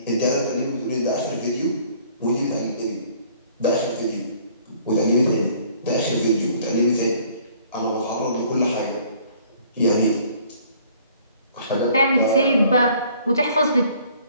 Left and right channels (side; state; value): both; inverted; correlation -0.57